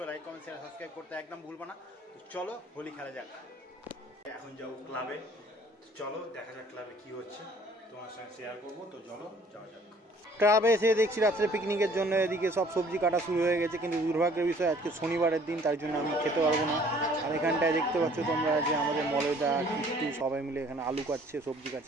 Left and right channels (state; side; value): normal; both; correlation 0.56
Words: লাইক কমেন্ট শেয়ার সাবস্ক্রাইব করতে একদম ভুলবো না। তো চলো হোলি খেলা যাক। এখন যাবো ক্লাবে, চলো দেখা যাক ক্লাবে কী হচ্ছে, তোমার সঙ্গে শেয়ার করবো। তো চলো যাওয়া যাক। ক্লাবে এসে দেখছি রাত্রে পিকনিকের জন্য এদিকে সব সবজি কাটা শুরু হয়ে গেছে, কিন্তু দুর্ভাগ্যের বিষয় আজকে শনিবারের দিন, তার জন্য আমি খেতে পারবো না। আর এখানটায় দেখতে পাচ্ছ তোমরা যে আমাদের মলয়দা কিট্টু সবাই মিলে এখানে আলু কাটছে, সবজি